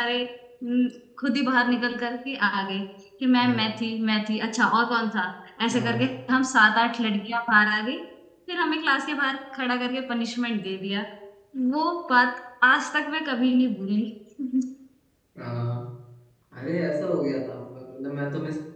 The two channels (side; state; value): both; identical; correlation 1.00